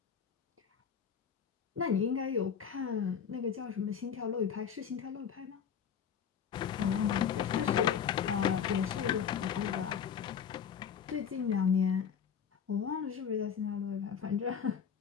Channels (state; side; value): quieter; right; 7.6 dB